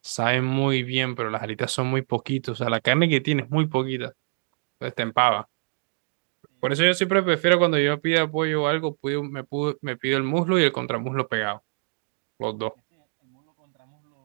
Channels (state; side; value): silent; left; digital silence